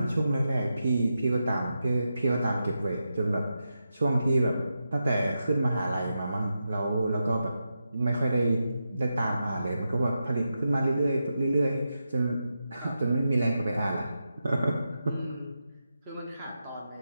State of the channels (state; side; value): inverted; both; correlation -0.88